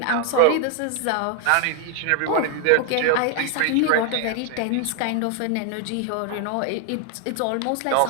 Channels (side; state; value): both; different; correlation 0.00